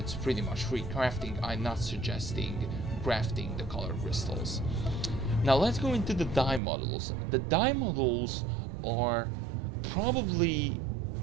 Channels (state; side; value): drops out; left; at 6.6 s